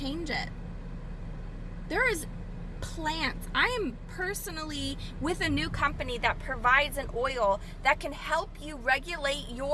it. There is plants. I am personally with a new company that provides an oil that can help you regulate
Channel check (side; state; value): both; identical; correlation 1.00